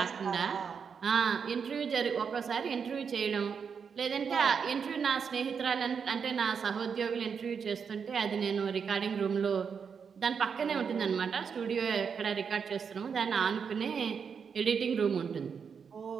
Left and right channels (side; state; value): left; quieter; 6.4 dB